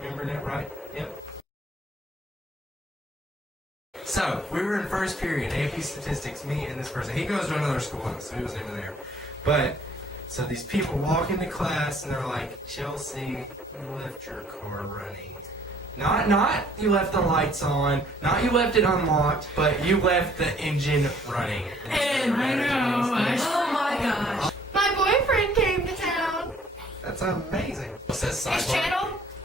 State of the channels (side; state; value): both; normal; correlation 0.59